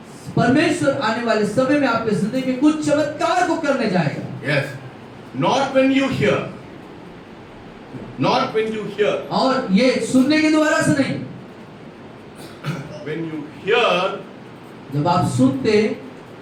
परमेश्वर आने वाले समय में आपके जिंदगी में कुछ चमत्कार को करने जाएगा। Yes. Not when you hear. Not when you hear. और ये सुनने के द्वारा से नहीं, When you hear, जब आप सुनते,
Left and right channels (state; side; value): identical; both; correlation 1.00